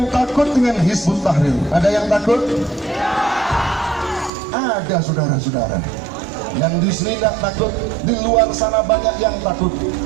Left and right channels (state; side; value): drops out; left; at 4.3 s